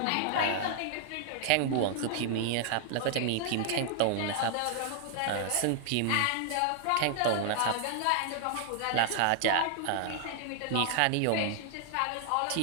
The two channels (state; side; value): different; both; correlation 0.00